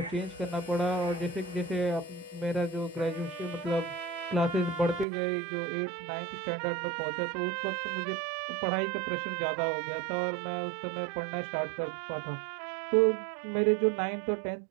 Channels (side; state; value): left; drops out; at 5.1 s